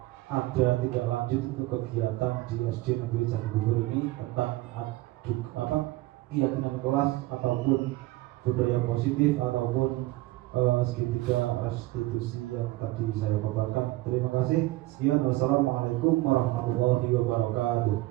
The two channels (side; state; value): left; quieter; 18.6 dB